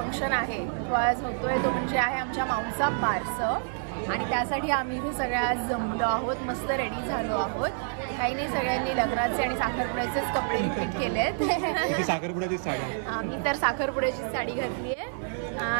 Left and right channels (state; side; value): silent; left; 59 dB below the other